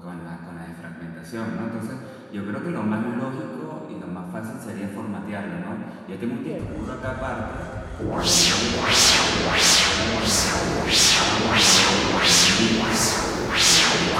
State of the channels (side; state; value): both; identical; correlation 1.00